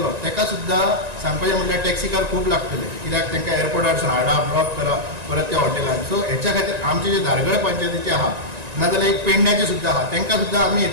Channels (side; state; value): left; late; 1.9 ms